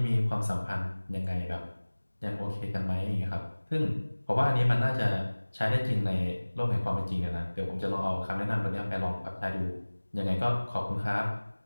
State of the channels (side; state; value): both; inverted; correlation -1.00